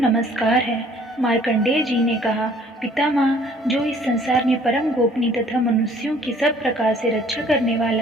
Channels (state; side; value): normal; both; correlation 0.56